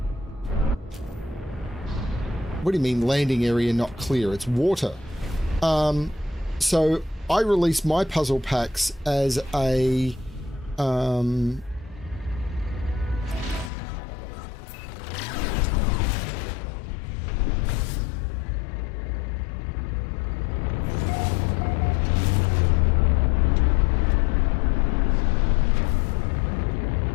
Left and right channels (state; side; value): drops out; right; at 13.7 s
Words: What do you mean landing area not clear? It's water. So I release my puzzle packs as a